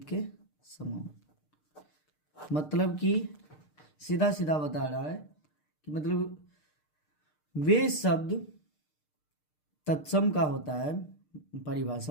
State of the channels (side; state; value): right; late; 6.6 ms